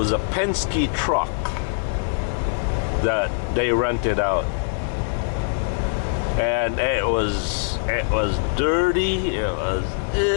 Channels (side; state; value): right; silent; digital silence